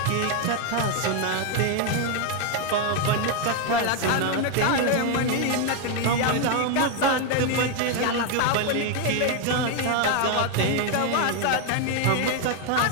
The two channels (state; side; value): different; both; correlation 0.01